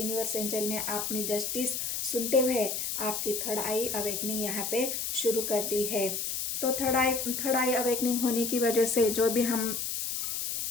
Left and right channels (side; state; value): left; noise; hiss, 2 dB below the sound